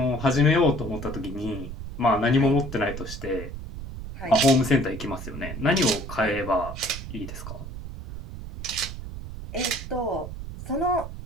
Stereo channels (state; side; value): noise; right; rumble, 9 dB below the sound